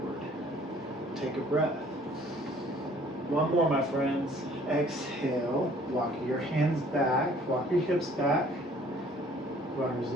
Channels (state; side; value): normal; both; correlation 0.56